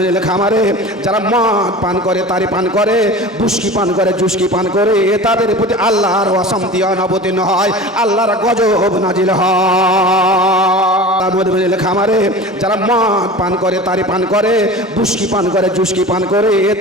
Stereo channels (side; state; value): both; normal; correlation 0.36